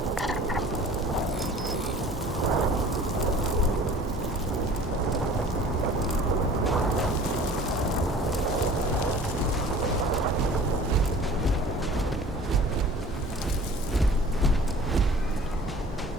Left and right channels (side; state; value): both; normal; correlation 0.46